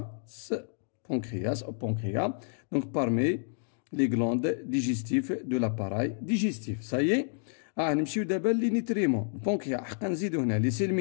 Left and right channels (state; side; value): silent; right; digital silence